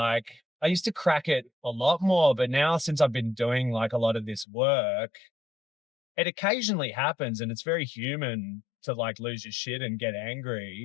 I used to crack it a lot more, but now since I've been doing like a lot of this work, it occasionally happens, and it's very human to like lose your shit and get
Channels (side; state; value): right; drops out; at 4.5 s